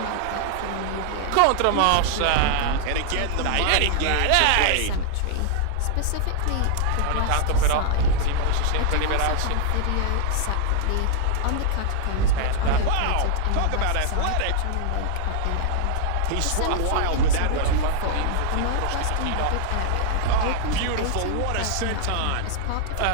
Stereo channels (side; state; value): both; different; correlation 0.00